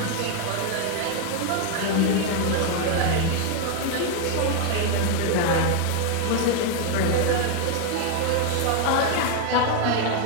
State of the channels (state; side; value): different; both; correlation 0.00